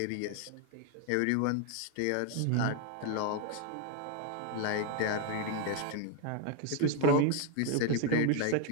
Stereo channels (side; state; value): both; different; correlation 0.01